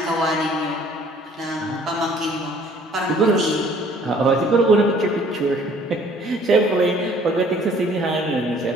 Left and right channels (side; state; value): both; normal; correlation 0.56